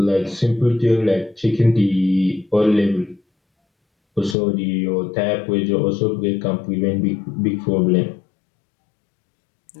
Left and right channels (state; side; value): drops out; right; at 4.4 s